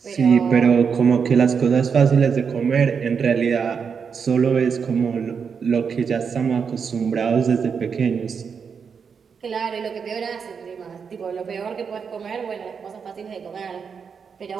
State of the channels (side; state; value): left; quieter; 6.3 dB